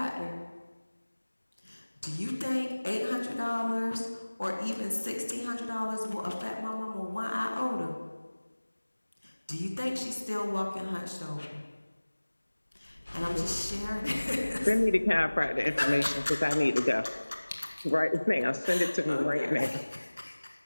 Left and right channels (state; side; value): inverted; both; correlation -1.00